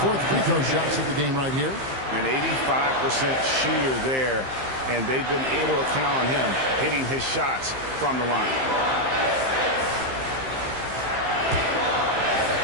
4th free throw shots of the game right here. An 85% shooter there, and they've been able to count on him hitting his shots from the line.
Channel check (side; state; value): left; late; 15 ms